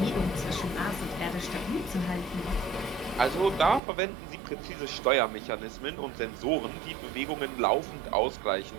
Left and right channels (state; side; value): drops out; left; at 3.8 s